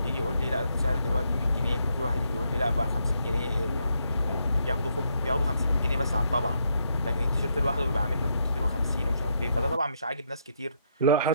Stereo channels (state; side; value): inverted; both; correlation -0.76